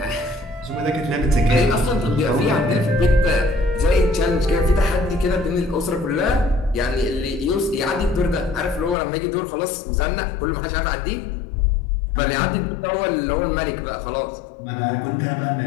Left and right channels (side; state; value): right; drops out; at 9.0 s